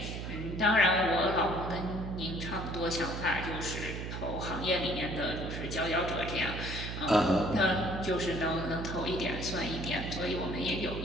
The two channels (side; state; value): right; noise; hum, 6 dB below the sound